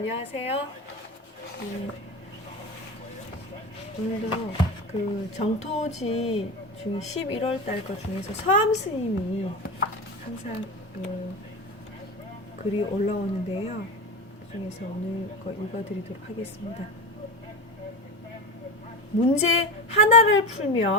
오늘도 그 정토지 중에 11월 달 거 중에서 서암 스님이 항상 글이 올라오는데요. 그 중에서 오늘 거 읽어드리도록 하겠습니다. 문제 하나를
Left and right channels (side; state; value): both; normal; correlation 0.24